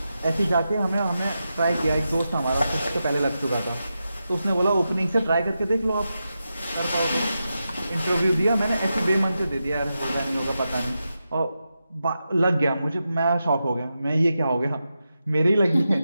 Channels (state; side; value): inverted; both; correlation -0.89